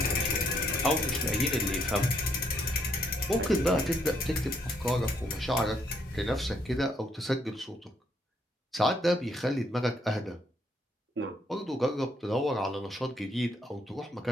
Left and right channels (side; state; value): both; normal; correlation 0.71